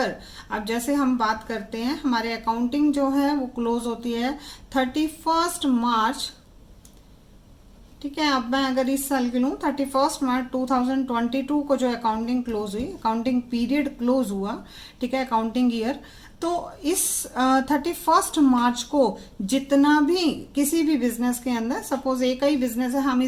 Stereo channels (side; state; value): both; identical; correlation 1.00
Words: अब जैसे हम बात करते हैं, हमारे अकाउंटिंग जो है वो क्लोज होती है 31 मार्च। ठीक है, अब मैं अगर इस साल की लूँ, 31 मार्च 2022 को जो अकाउंटिंग क्लोज हुई, अकाउंटिंग पीरियड क्लोज हुआ, ठीक है, अकाउंटिंग ईयर, तो इस 31 मार्च को जितना भी किसी भी बिजनेस के अंदर, सपोज ए का ही बिजनेस है, हम